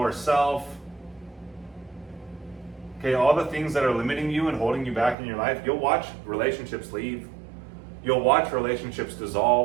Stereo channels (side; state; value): left; drops out; at 5.2 s